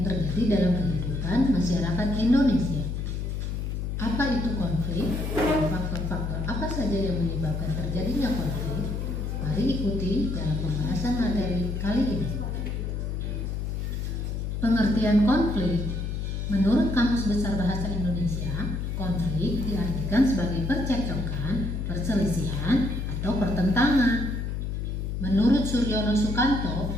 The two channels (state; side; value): noise; left; hum, 3 dB below the sound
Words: terjadi dalam kehidupan masyarakat Indonesia. Apa itu konflik? Dan faktor-faktor apa saja yang menyebabkan terjadinya konflik? Mari ikuti dalam pembahasan materi kali ini. Pengertian konflik. Menurut Kamus Besar Bahasa Indonesia, konflik diartikan sebagai percekcokan, perselisihan, atau pertentangan. Menurut Suryono Sukanto,